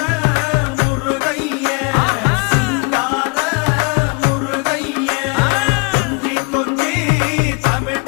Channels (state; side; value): quieter; right; 31.1 dB